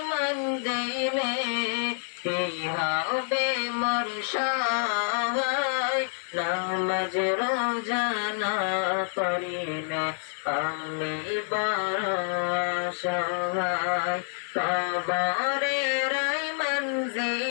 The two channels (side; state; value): right; silent; 57 dB below the other